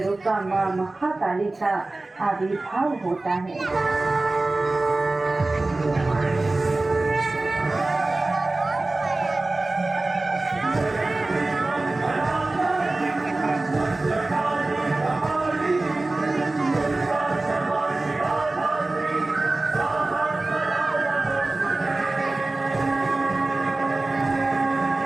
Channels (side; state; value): left; quieter; 3.0 dB